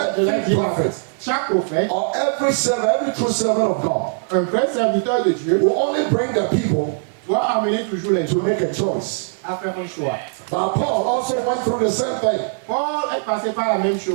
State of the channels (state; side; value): silent; left; 65 dB below the other